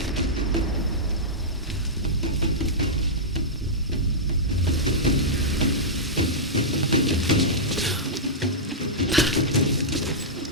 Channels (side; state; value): both; normal; correlation -0.13